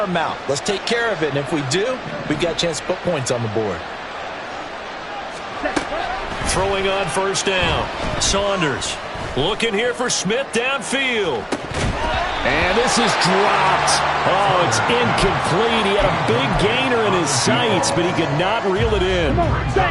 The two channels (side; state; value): both; identical; correlation 1.00